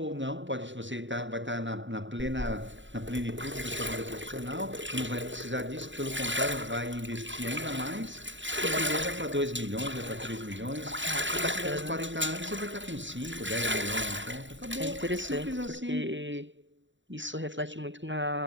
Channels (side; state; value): left; late; 0.54 ms